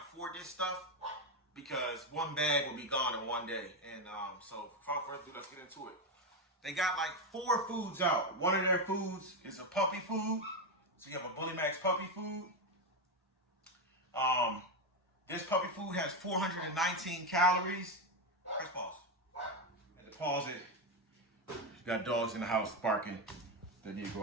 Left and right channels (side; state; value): both; normal; correlation 0.10